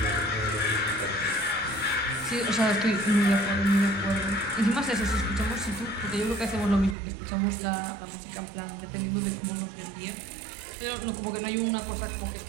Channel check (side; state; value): left; drops out; at 7.0 s